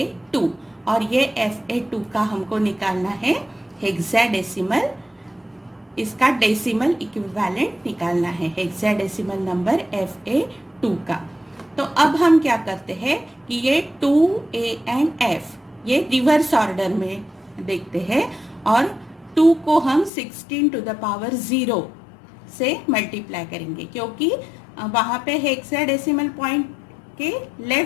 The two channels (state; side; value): drops out; right; at 20.1 s